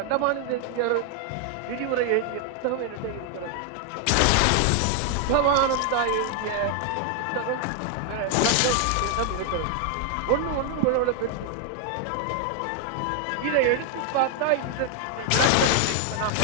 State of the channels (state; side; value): different; both; correlation 0.00